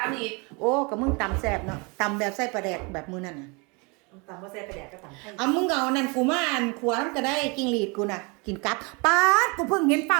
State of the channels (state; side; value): quieter; left; 30.1 dB